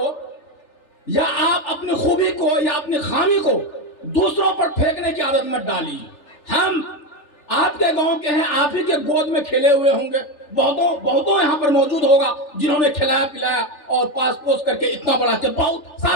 یا آپ اپنی خوبی کو یا اپنی خامی کو دوسروں پر پھینکنے کی عادت مت ڈالیے. ہم آپ کے گاؤں کے ہیں, آپ ہی کے گود میں کھیلے ہوئے ہوں گے. بہتوں یہاں پر موجود ہوگا جنہوں نے کھلایا پلایا اور پاس پوس کر کے اتنا بڑا کہ بہت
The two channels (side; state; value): right; late; 3.4 ms